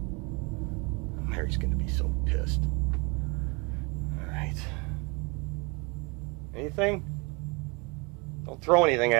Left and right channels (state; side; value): quieter; left; 29.6 dB